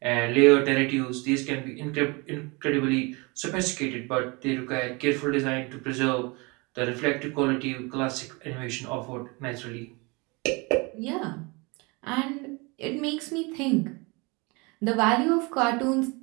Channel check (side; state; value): left; quieter; 27.7 dB